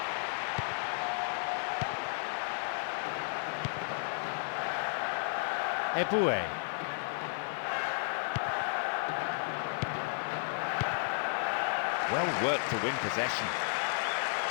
Eboué. Well worked to win possession.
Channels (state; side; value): silent; right; 56 dB below the other